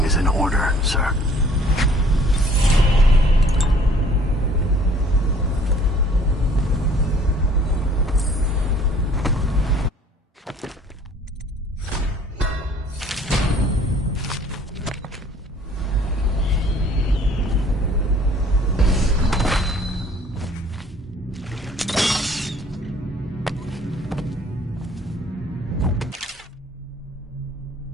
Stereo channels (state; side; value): normal; both; correlation 0.56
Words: is in order, sir.